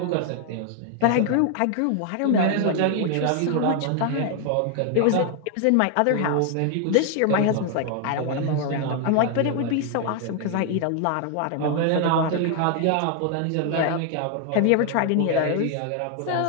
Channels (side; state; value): both; different; correlation 0.00